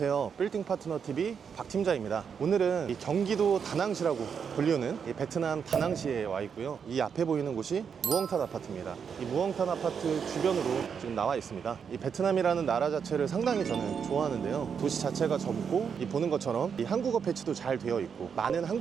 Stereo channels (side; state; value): left; quieter; 6.8 dB